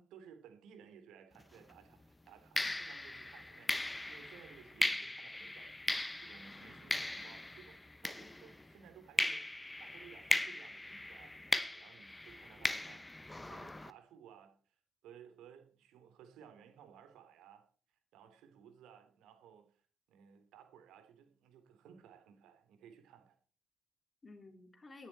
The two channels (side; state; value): both; normal; correlation 0.98